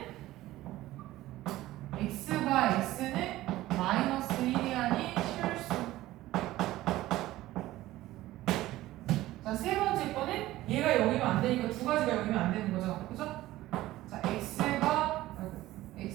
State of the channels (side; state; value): left; quieter; 16.2 dB